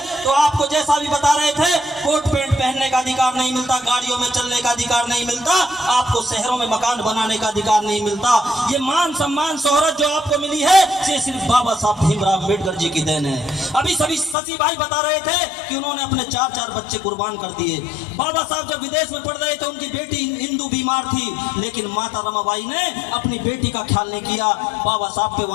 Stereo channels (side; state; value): right; drops out; at 14.4 s